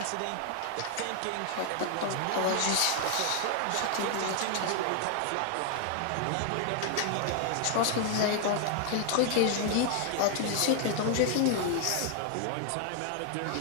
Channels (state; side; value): different; both; correlation 0.00